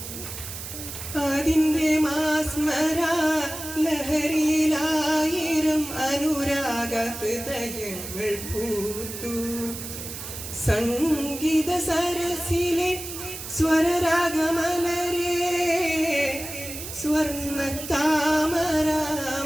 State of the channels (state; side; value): noise; right; hiss, 9 dB below the sound